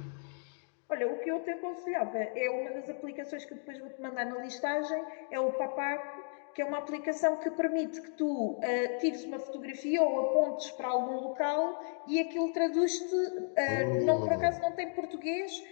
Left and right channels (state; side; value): silent; right; 55 dB below the other